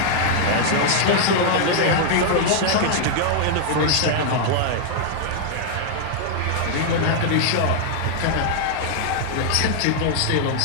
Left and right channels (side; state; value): both; different; correlation 0.00